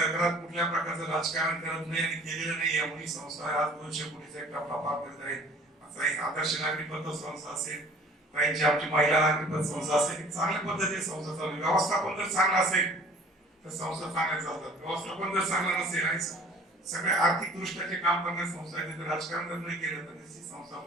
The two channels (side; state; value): both; normal; correlation 0.51